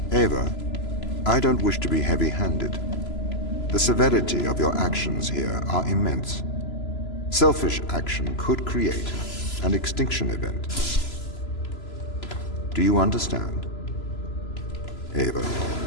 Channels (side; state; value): right; late; 3.0 ms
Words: Ava, I don't wish to be heavy-handed. The severity of your actions here are immense. Selfish action could create an extinction event. Do you understand? Ava.